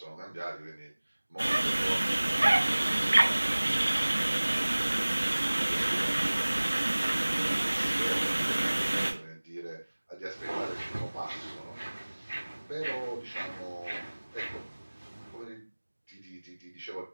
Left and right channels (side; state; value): both; inverted; correlation -1.00